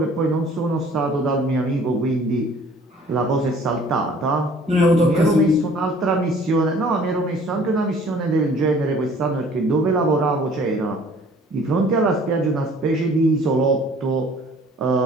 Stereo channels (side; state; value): both; normal; correlation 0.53